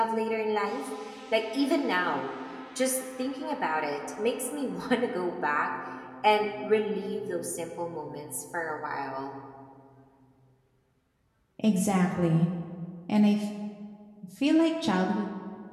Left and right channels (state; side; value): identical; both; correlation 1.00